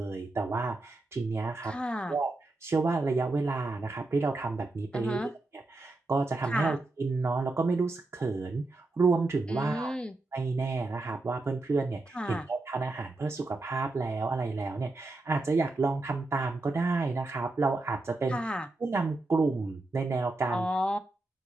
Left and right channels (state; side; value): quieter; left; 3.0 dB